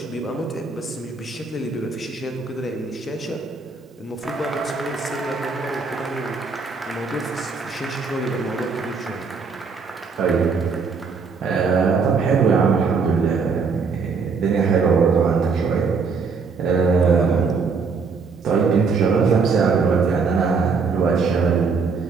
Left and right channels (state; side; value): quieter; left; 4.9 dB